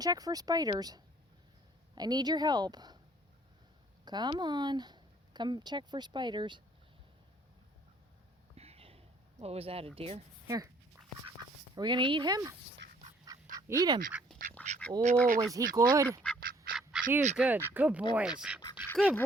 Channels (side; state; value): both; normal; correlation 0.60